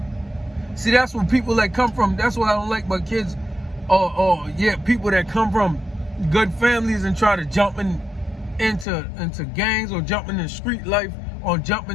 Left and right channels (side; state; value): right; drops out; at 8.8 s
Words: See, that's when people that come from, that's what I don't like about kids, people that come from good families and try to jump into gangs or jump into street life or jump